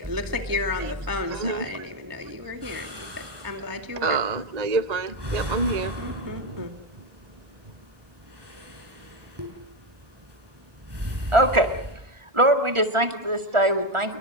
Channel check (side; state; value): left; late; 1.4 ms